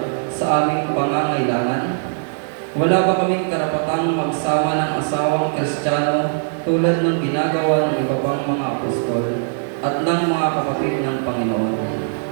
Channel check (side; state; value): left; silent; 59 dB below the other